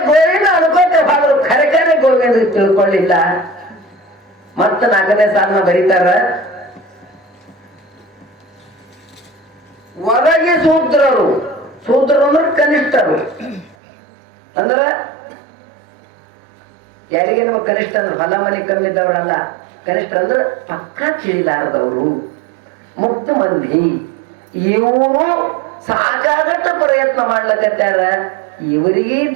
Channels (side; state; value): left; drops out; at 13.8 s